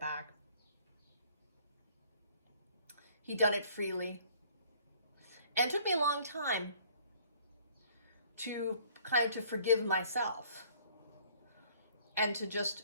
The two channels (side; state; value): both; inverted; correlation -0.56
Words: He'd done it freely. And it took me a long time to forgive myself and to just